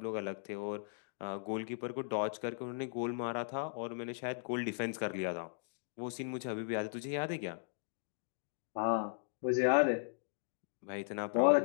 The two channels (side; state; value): right; silent; digital silence